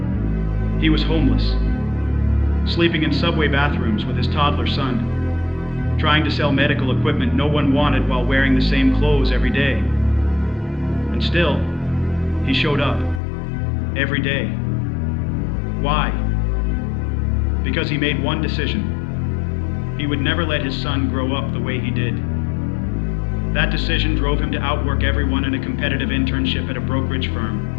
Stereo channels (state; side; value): drops out; right; at 13.2 s